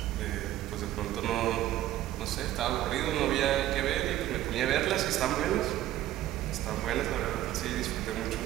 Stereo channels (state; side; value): quieter; left; 13.8 dB